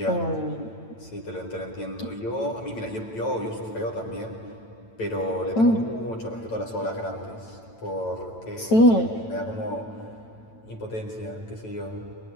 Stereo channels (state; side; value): late; right; 9.0 ms